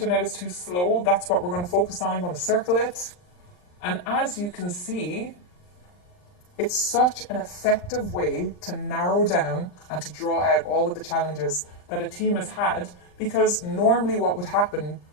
is too slow. That's what we're going to focus on. I'm going to circle it. And as you can see, it's such an effective way to narrow down and to draw out all of the challenges that a team has had, because normally what would happen,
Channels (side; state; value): right; late; 39 ms